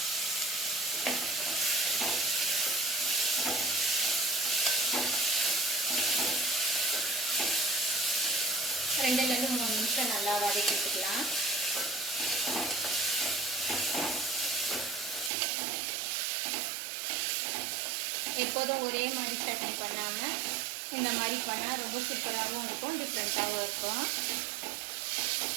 ரெண்டுலேருந்து 3 நிமிஷம் நல்லா வதக்கிட்டுக்கலாம். எப்போதும் ஒரே மாதிரி சட்னி பண்ணாமல் இந்த மாதிரி பண்ணால் ரொம்ப சூப்பராகவும் இருக்கும், டிஃப்ரெண்ட்டாகவும் இருக்கும்.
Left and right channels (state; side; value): drops out; left; at 15.3 s